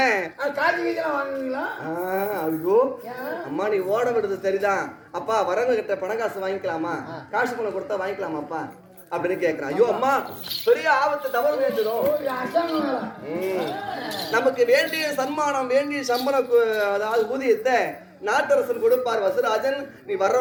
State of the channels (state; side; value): identical; both; correlation 1.00